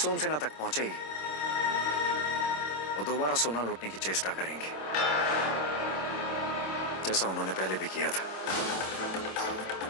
तक पहुंचेगी वो दोबारा सोना लूटने की चेष्टा करेंगे, जैसा उन्होंने पहले भी किया था।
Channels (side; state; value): right; late; 26 ms